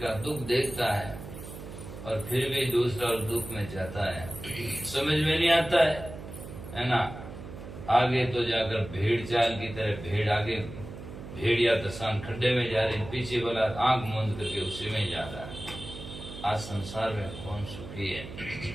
दुख देखता है, और फिर भी दूसरा और दुख में जाता है, समझ में नहीं आता है ना। आगे तो जाकर भेड़ चाल की तरह भेड़ आगे, भेड़िया दसान खड्डे में जा रही, पीछे वाला आंख मूंद करके उसी में जा रहा है। आज संसार में कौन सुखी है।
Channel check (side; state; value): right; noise; hum, 12 dB below the sound